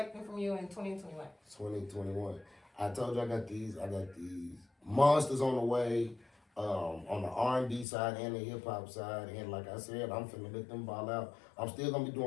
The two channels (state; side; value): drops out; right; at 7.9 s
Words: from you in 2021? 2021. I told you I got these monsters on the way, on the R&B side and the hip hop side. And like I said, I'm finna let them ball out. I'm still gonna be